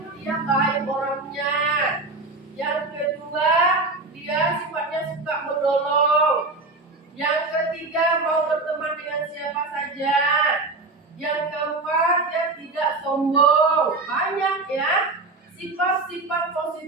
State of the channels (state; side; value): quieter; left; 3.4 dB